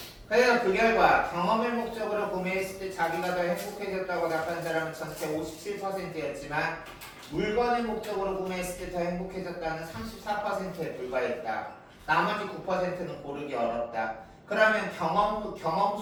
그래서 그 결과 경험을 목적으로 구매했을 때 자기가 더 행복해졌다고 답한 사람은 전체 57%였지만 물건을 목적으로 구매했을 때 더 행복해졌다는 34%에 불과했다. 나머지 9%는 고르기 어렵다. 그러면 경험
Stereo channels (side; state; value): both; identical; correlation 1.00